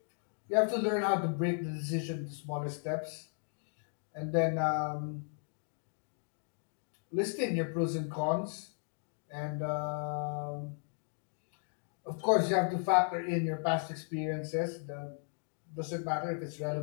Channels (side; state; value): right; silent; 54 dB below the other